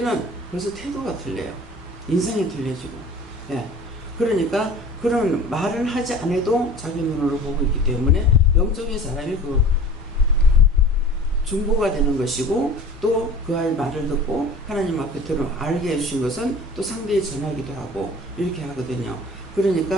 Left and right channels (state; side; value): normal; both; correlation 0.42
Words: 벌써 태도가 틀려요. 인상이 틀려지고. 예. 그러니까 그런 말을 하지 않아도 자기 눈으로 보고 있기 때문에 영적인 사람이 그 중보가 되는 것이고 또 그 아이의 말을 듣고 하나님 앞에 들어 알게 해주신 것은 또 상대에 전하기도 하고 이렇게 하거든요.